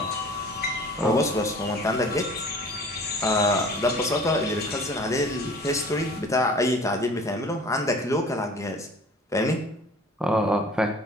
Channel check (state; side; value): normal; both; correlation 0.46